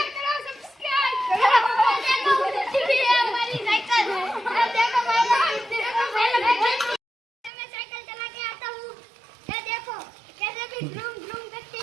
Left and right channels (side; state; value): left; drops out; at 7.5 s